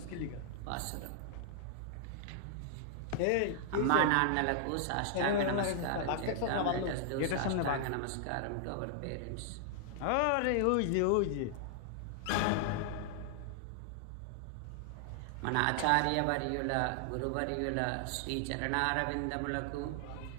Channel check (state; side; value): different; both; correlation -0.01